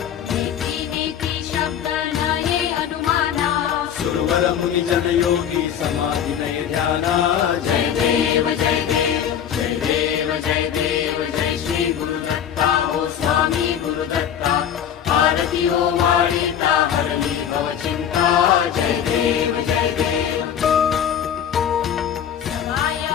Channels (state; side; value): quieter; right; 9.1 dB